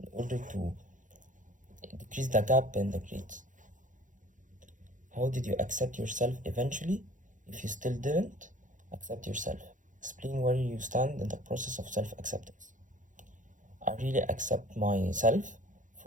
in order to decrease the gap in the grades. How did you accept yourself eventually? If you still didn't, accept yourself. Explain where you stand in the process of self acceptance. I really accept myself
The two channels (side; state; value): left; late; 0.37 ms